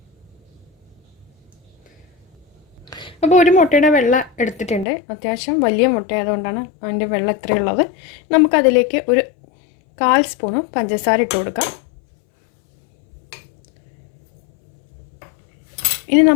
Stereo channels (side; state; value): right; drops out; at 4.9 s